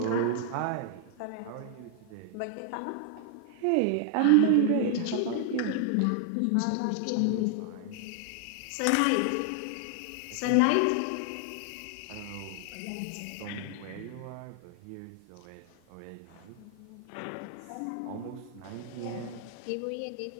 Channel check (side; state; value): both; different; correlation 0.00